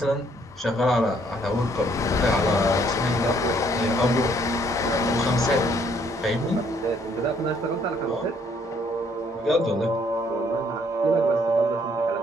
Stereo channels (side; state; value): both; normal; correlation 0.65